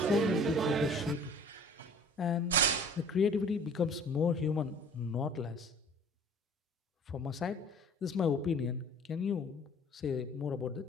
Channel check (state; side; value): normal; both; correlation 0.49